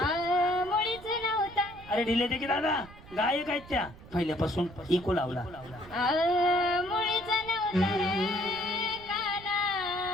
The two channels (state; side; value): noise; right; rumble, 19 dB below the sound